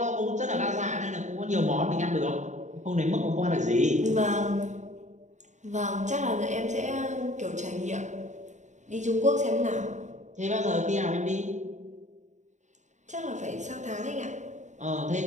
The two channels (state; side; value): late; left; 0.35 ms